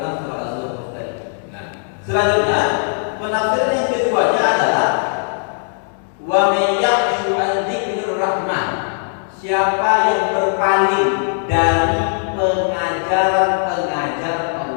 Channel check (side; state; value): right; silent; 67 dB below the other